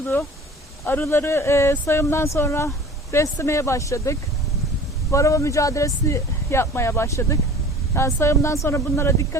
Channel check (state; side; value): normal; both; correlation 0.43